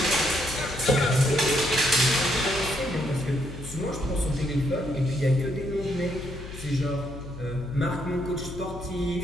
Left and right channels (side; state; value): left; noise; hum, 12 dB below the sound